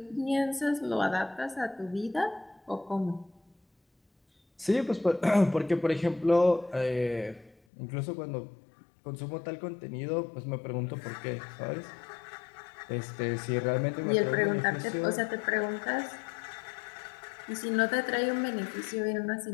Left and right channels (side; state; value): right; drops out; at 7.6 s